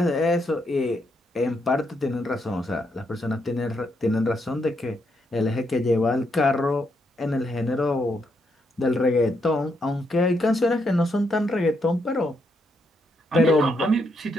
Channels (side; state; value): both; normal; correlation 0.78